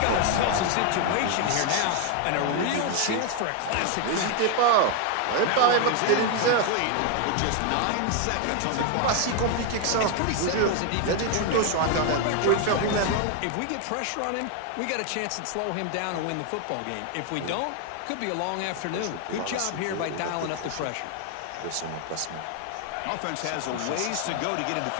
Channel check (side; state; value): both; different; correlation 0.01